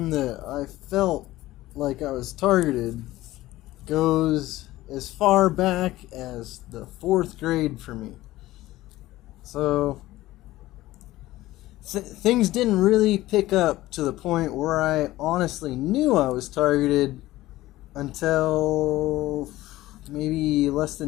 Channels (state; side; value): quieter; right; 16.7 dB